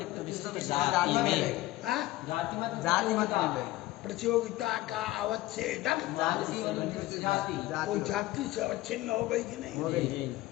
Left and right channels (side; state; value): right; quieter; 17.3 dB